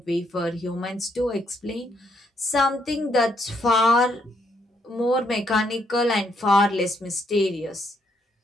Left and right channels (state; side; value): normal; both; correlation 0.73